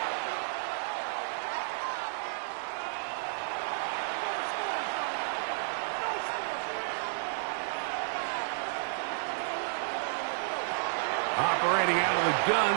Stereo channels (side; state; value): left; silent; digital silence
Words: Operating out of the